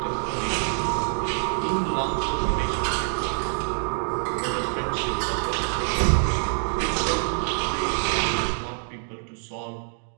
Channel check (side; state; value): left; silent; 60 dB below the other